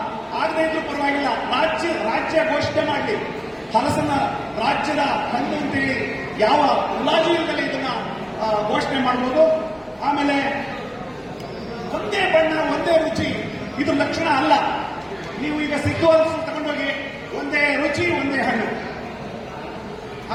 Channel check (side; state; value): both; identical; correlation 1.00